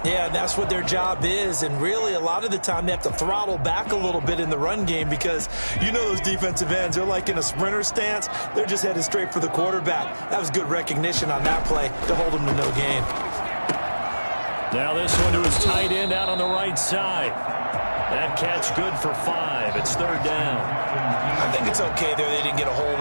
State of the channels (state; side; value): inverted; both; correlation -1.00